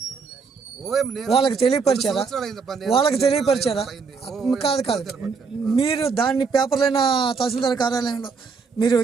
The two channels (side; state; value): left; quieter; 5.1 dB